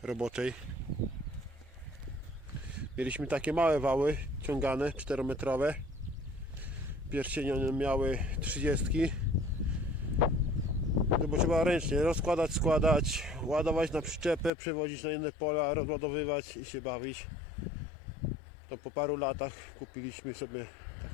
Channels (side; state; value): right; drops out; at 14.5 s